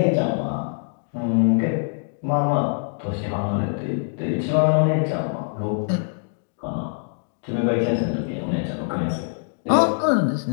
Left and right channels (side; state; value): right; silent; digital silence